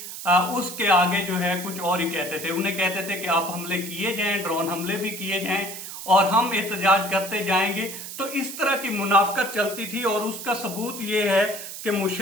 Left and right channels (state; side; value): noise; right; hiss, 10 dB below the sound